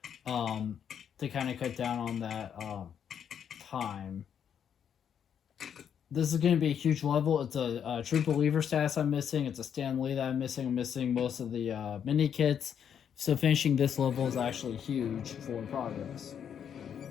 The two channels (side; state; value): right; quieter; 8.4 dB